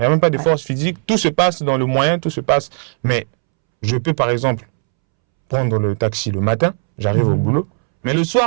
n'y a même pas de force physique. Tout se passe dans le moyen, tout se passe. Mais je peux par exemple prendre le taxi le matin, j'arrive au boulot. Mais le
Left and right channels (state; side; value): silent; left; 68 dB below the other